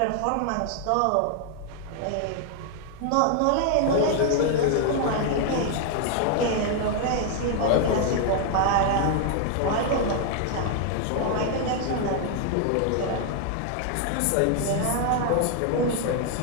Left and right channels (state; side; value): different; both; correlation 0.00